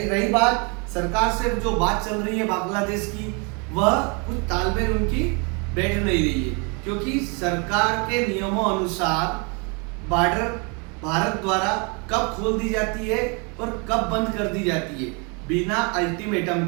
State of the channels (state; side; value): quieter; left; 33.1 dB